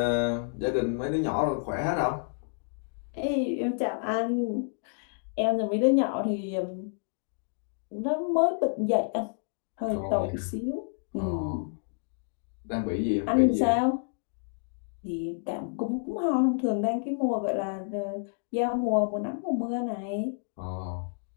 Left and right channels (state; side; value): silent; right; digital silence